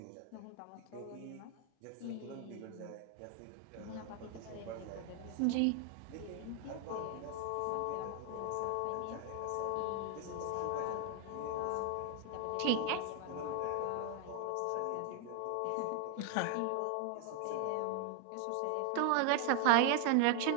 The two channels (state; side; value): different; both; correlation 0.00